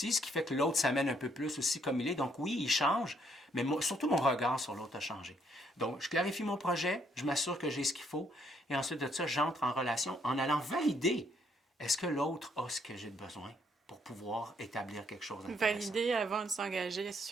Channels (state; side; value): normal; both; correlation 0.70